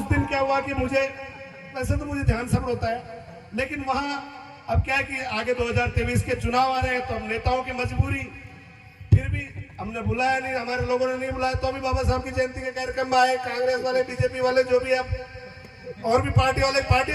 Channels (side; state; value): both; identical; correlation 1.00